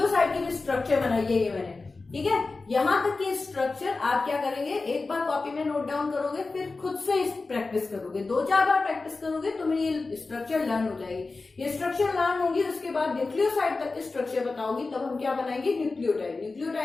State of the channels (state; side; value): quieter; right; 3.8 dB